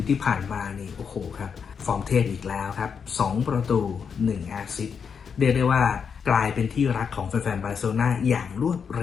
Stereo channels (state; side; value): quieter; right; 6.5 dB